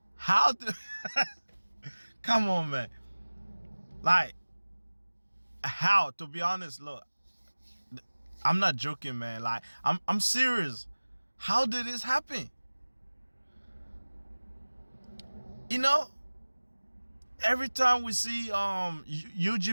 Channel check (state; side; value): inverted; both; correlation -1.00